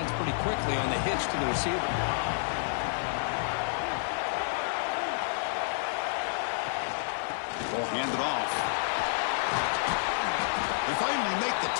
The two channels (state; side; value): silent; right; 58 dB below the other